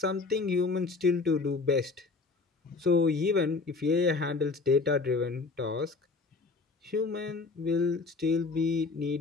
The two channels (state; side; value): quieter; right; 4.0 dB